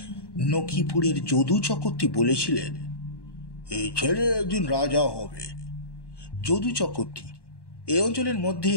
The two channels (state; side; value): late; right; 1.1 ms